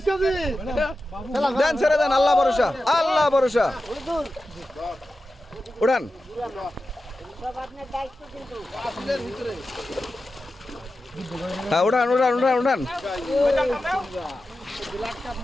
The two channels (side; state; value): both; normal; correlation 0.92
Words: KG দেন ছেড়ে দেন, আল্লাহ ভরসা, আল্লাহ ভরসা। উড়ান, হ্যাঁ উড়ান উড়ান উড়ান উড়ান।